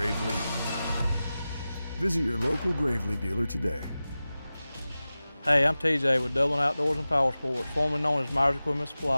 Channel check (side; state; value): both; inverted; correlation -0.95